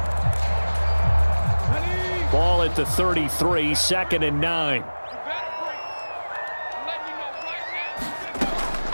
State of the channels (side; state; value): both; inverted; correlation -1.00